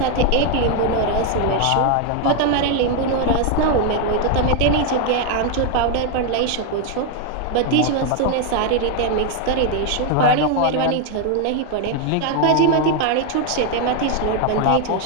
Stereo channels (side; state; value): both; different; correlation 0.01